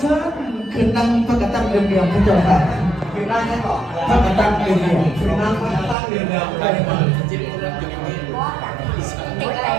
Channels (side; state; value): left; drops out; at 6.0 s